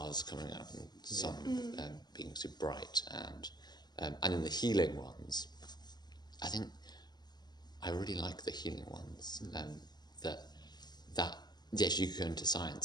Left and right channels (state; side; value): late; right; 0.20 ms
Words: coming out and sun being super bright, and in the healing ones, I think I really like the healing ones. That yes, you could go into